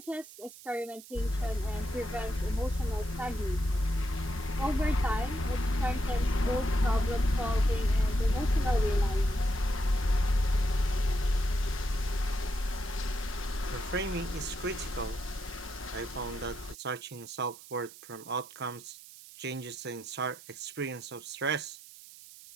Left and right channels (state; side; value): noise; right; hiss, 18 dB below the sound